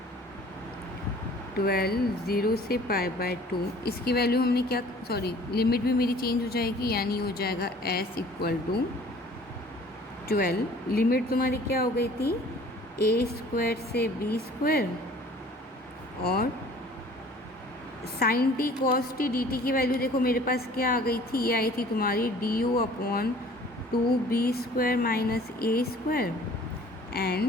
12, 0 से पाई बाय 2, इसकी वैल्यू हमने क्या, सॉरी लिमिट भी मेरी चेंज हो जाएगी, यानी हो जाएगा s इक्वल टू 12, लिमिट तुम्हारी क्या हो गई थी, ए स्क्वायर से बी स्क्वायर और sine T cos t d t की वैल्यू देखो मेरे पास क्या आ गई थी, ये आई थी तुम्हारी d u upon 2 b square minus a square,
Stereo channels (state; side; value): normal; both; correlation 0.51